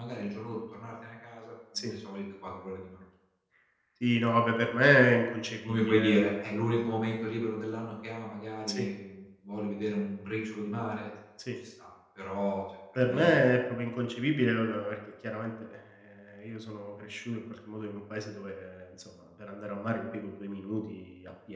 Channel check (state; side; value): identical; both; correlation 1.00